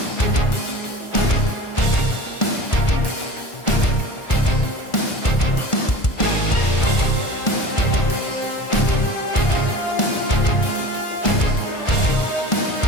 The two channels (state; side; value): late; right; 1.4 ms